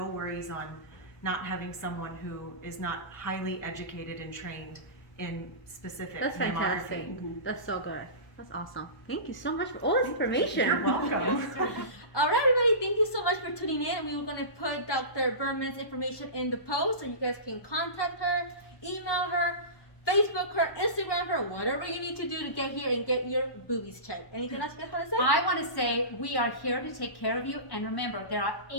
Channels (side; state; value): right; late; 1.2 ms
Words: worries on not having someone who is not highly educated and trained in specific That's mammography. fantastic. That's so good. That's awesome. Thank you so much for all this information. You're welcome. All right, everybody, thank you so much for tuning in. We were going to put Dr. Berman's information in the post so you guys can contact her, email her, Facebook her, Instagram her, whatever you need to do to get here and get your boobies checked. Anything else you guys want to say? I want to say we are here to take care of you. And remember, there are